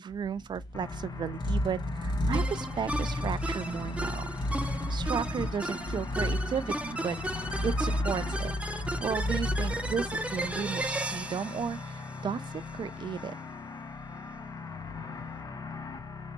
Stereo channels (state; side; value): normal; both; correlation 0.71